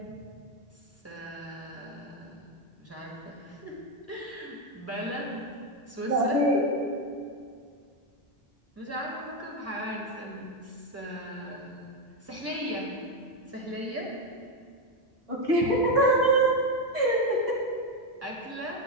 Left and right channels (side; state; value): both; normal; correlation 0.07